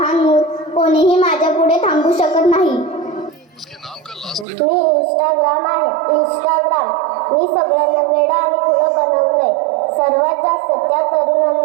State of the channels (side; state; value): left; drops out; at 4.5 s